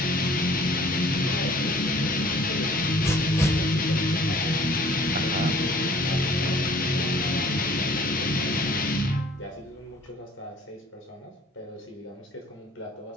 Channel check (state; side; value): normal; both; correlation 0.54